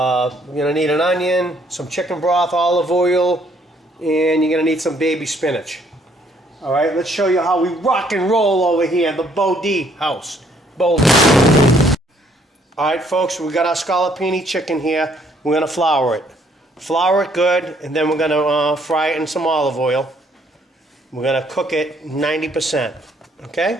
going to need an onion, some chicken broth, olive oil, and you're going to need some baby spinach. All right, let's show you how we rock and roll over here in the Bodhi house. Boulder. All right, folks, we got our scallopini chicken here. We're going to flour it. Flour it good, and then we're going to fry it in some olive oil. We're going to cook it 90%,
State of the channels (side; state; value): both; normal; correlation 0.66